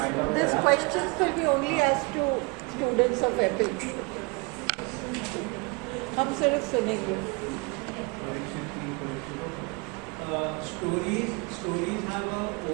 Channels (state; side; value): quieter; left; 28.6 dB